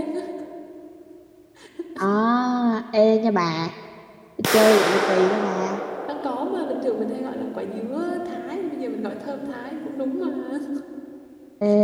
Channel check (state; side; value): identical; both; correlation 1.00